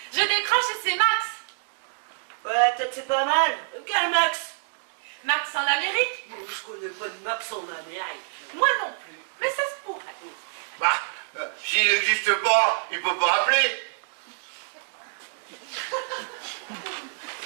Je décroche et c'est Max. Ouais, peut-être c'est pas mal. Quel Max? Max en Amérique? Moi, je connais pas de Max en Amérique. Moi non plus, mais ça se pourrait. Bah, s'il n'existe pas, il peut pas appeler.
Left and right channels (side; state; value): left; silent; digital silence